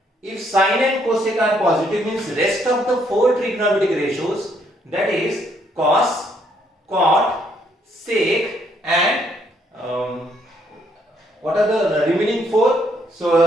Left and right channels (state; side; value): normal; both; correlation 0.70